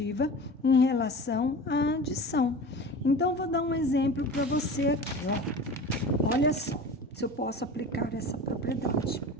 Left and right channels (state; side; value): normal; both; correlation 0.35